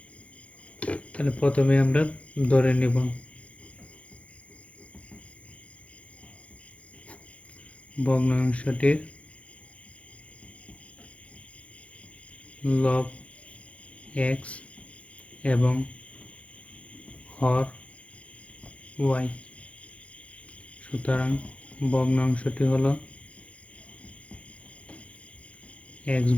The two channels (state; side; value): late; right; 0.063 ms